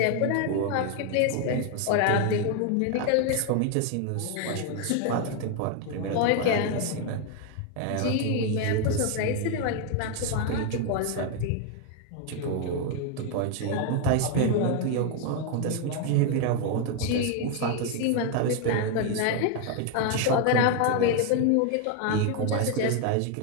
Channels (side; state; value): both; different; correlation 0.01